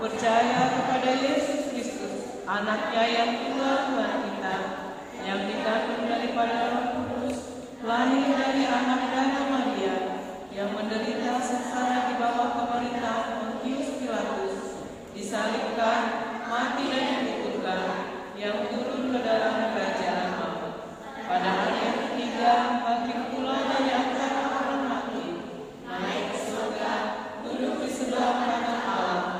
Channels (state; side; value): identical; both; correlation 1.00